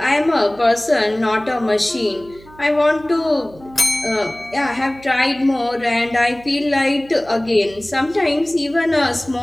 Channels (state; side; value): noise; right; hum, 23 dB below the sound